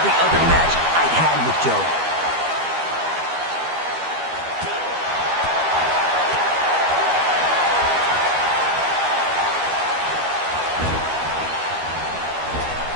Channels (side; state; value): left; late; 12 ms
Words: other match I'd had with Joe.